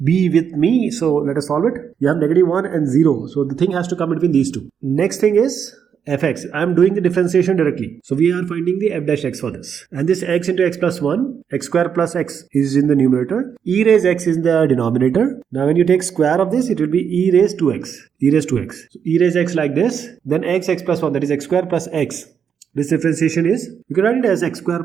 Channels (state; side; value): quieter; left; 7.5 dB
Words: be with me. So let us solve it. You have -1 and 0. So the thing has to come between these two. Next thing is fx. I am doing the differentiation directly. So we are finding the f dash x for this. And this x into x plus 1, x square plus x is in the numerator. E raise x is in the denominator. Now when you take square of this, it will be e raise 2x. E raise 2x. So e raise x like this. Then x plus 1, that is x square plus x. This differentiation is, you can write it as x square